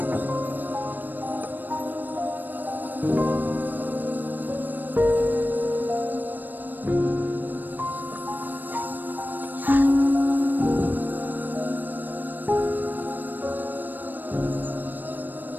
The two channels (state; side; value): late; left; 0.089 ms